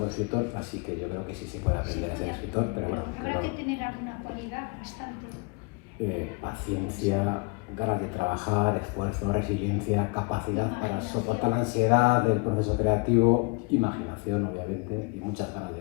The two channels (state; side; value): quieter; right; 30.7 dB